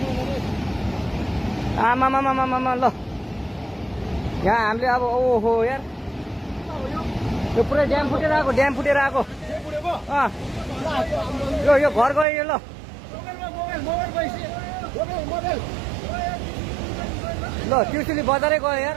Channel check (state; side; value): drops out; left; at 12.2 s